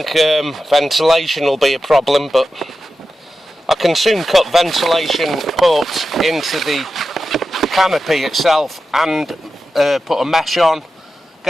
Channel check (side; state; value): both; normal; correlation 0.92